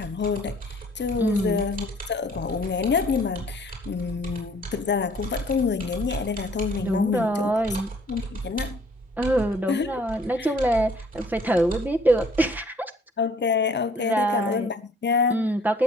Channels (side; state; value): both; normal; correlation 0.57